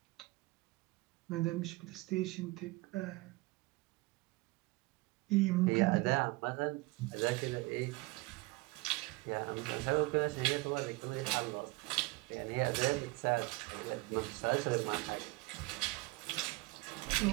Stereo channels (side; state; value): left; quieter; 23.1 dB